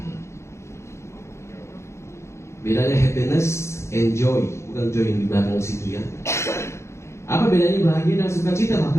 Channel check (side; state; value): right; late; 0.13 ms